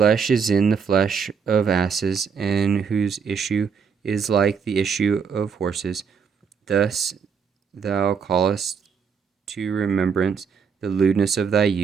is in the flesh of asses, and whose issue is like the issue of horses. Thus thou callest to remembrance the lewdness of thy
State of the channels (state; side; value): quieter; left; 6.3 dB